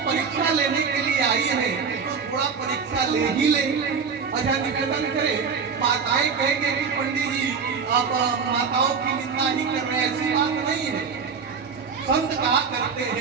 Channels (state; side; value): quieter; left; 5.8 dB